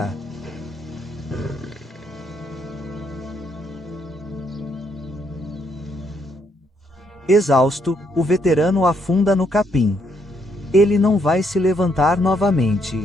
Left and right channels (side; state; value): both; normal; correlation 0.73